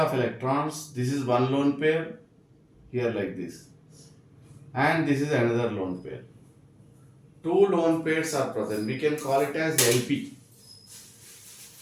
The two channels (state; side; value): identical; both; correlation 1.00